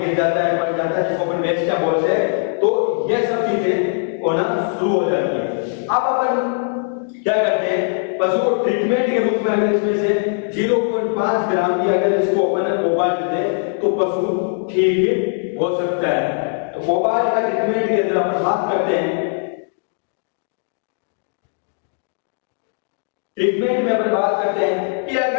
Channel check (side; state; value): right; silent; 66 dB below the other